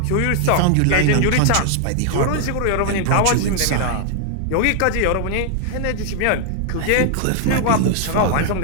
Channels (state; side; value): different; both; correlation 0.00